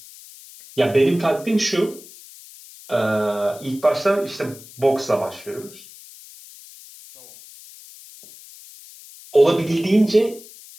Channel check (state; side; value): noise; left; hiss, 20 dB below the sound